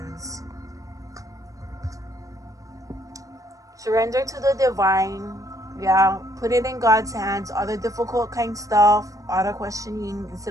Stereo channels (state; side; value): late; left; 0.16 ms